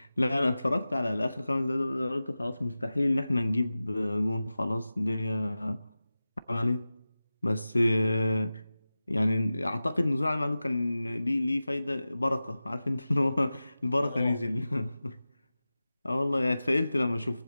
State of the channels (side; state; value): both; inverted; correlation -0.95